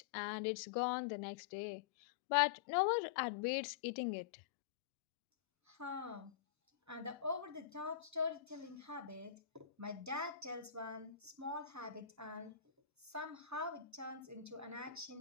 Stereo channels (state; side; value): quieter; right; 9.9 dB